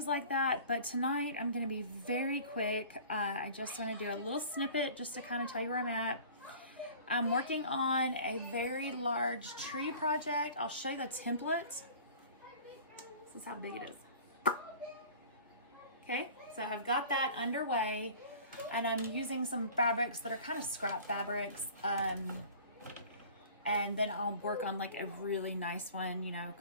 like that. But tonight I'm going to be very quick. I just want to do a little snippet just to kind of tell you where I'm at. I'm working on a very large tree project. I'll show you the template. This is how big it is. Okay, so I've got that underway and I'm using some fabrics that are kind of scrap fabrics. And then I'll work on like a really nice one, you know,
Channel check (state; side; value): inverted; both; correlation -0.44